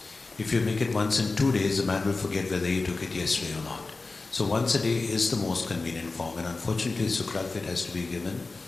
If you make it once in 2 days, the man will forget whether he took it yesterday or not. So once a day is the most convenient form, and unfortunately, sucralfate has to be given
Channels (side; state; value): right; quieter; 3.7 dB